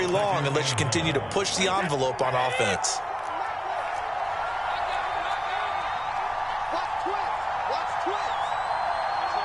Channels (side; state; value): both; identical; correlation 1.00